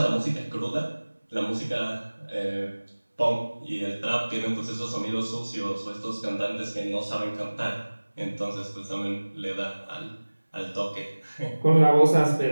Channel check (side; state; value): both; inverted; correlation -1.00